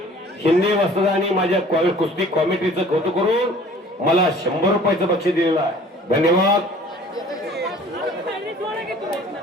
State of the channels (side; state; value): both; normal; correlation 0.50